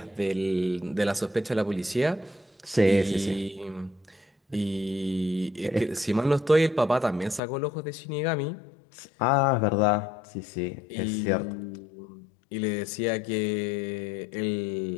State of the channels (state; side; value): drops out; right; at 7.4 s